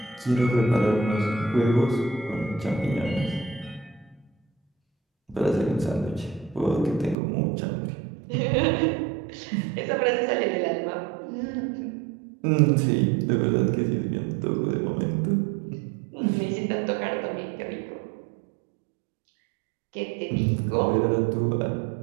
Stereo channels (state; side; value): drops out; left; at 7.2 s